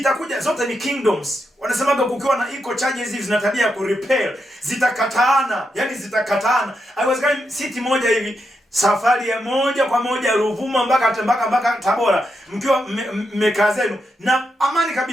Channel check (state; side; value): normal; both; correlation 0.84